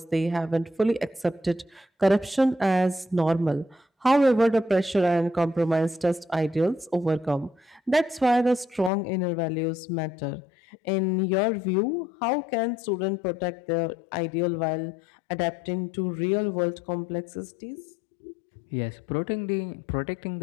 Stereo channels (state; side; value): drops out; right; at 8.9 s